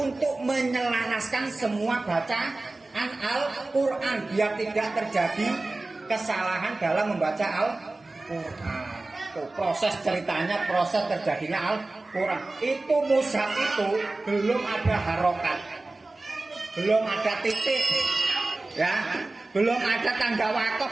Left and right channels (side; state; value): left; quieter; 3.1 dB